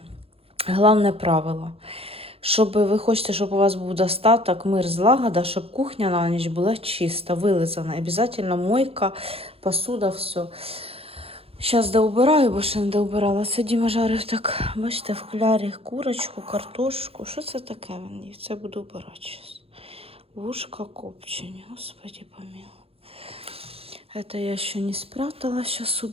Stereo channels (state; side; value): late; left; 0.28 ms